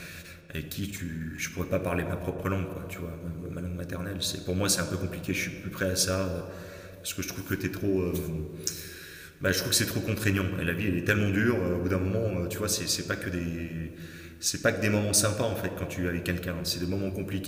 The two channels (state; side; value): identical; both; correlation 1.00